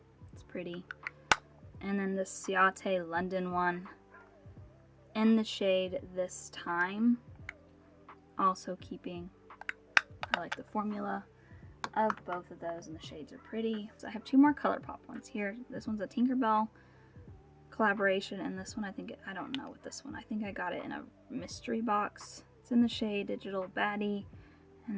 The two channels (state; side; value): identical; both; correlation 1.00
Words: It's pretty. And then the Ciate London one in the shade This Time. Also keeping. I like the formula of both of those, and the shades are pretty. So I have two more ColourPop ones here. This one's a Tinkerbell collaboration, and this one I don't know what this one. I think I got it in a mystery box. It's in the shade Digital Baddie,